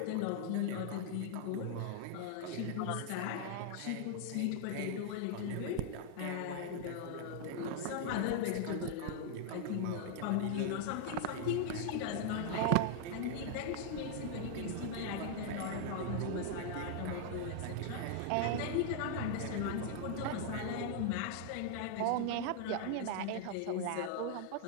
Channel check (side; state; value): both; different; correlation 0.00